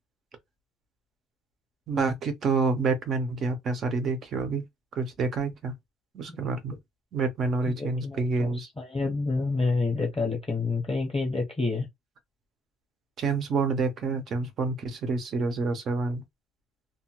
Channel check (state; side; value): normal; both; correlation 0.65